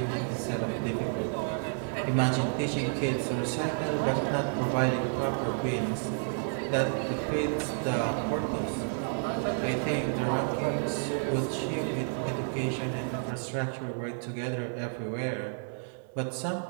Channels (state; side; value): silent; left; 57 dB below the other